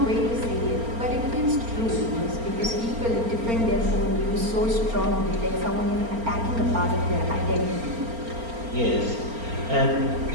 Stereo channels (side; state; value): left; late; 4.3 ms